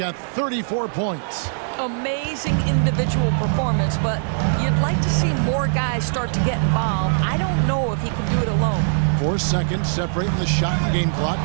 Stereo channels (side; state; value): left; silent; digital silence